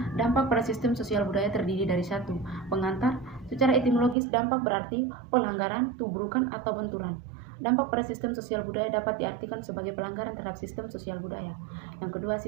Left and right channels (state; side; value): drops out; left; at 4.2 s